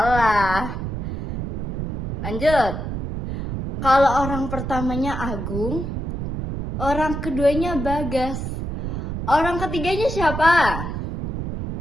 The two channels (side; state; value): right; noise; rumble, 4 dB below the sound